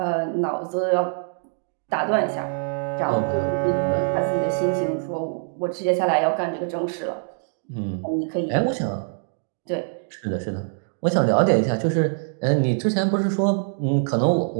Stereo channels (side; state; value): left; silent; digital silence